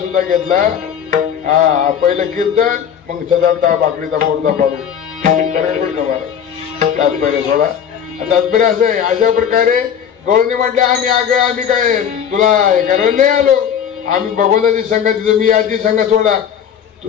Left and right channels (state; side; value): quieter; right; 8.4 dB